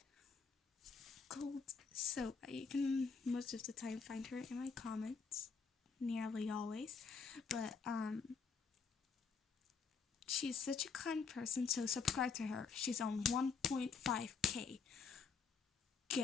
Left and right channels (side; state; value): right; quieter; 5.4 dB